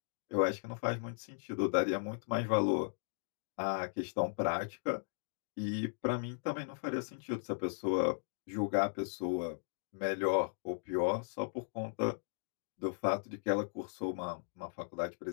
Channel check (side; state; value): right; silent; digital silence